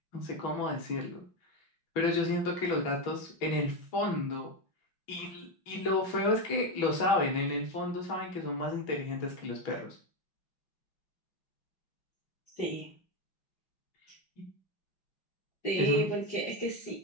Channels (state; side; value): late; right; 6.1 ms